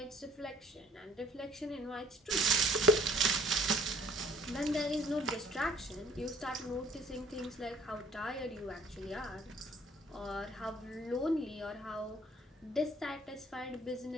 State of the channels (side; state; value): both; normal; correlation 0.57